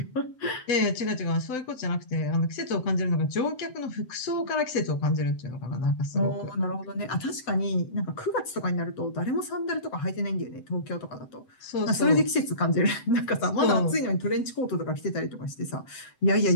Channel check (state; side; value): late; right; 7.9 ms